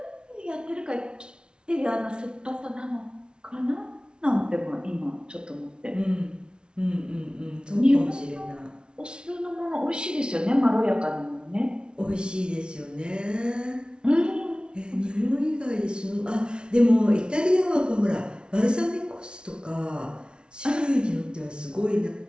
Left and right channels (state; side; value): late; left; 0.056 ms